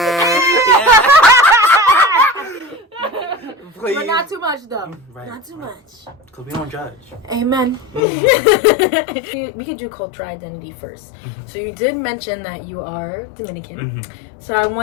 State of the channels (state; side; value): drops out; right; at 8.0 s